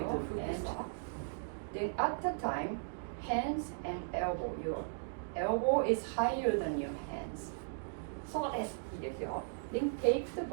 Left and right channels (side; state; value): left; silent; digital silence